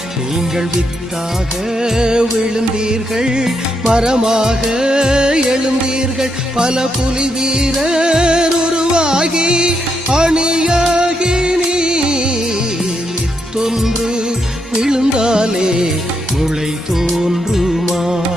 நீங்கள் வித்தாக விழுந்தீர்கள், மரமாக எழுந்தீர்கள். பல புலி வீரர் உருவாகி அணியாகி நீர் வித்தொன்று விழுந்தாலே முளை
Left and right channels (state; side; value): normal; both; correlation 0.80